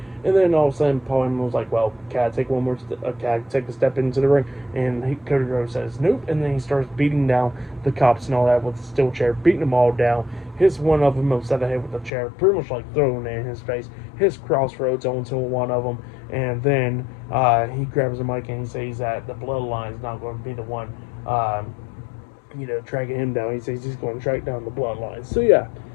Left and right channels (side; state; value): right; drops out; at 12.1 s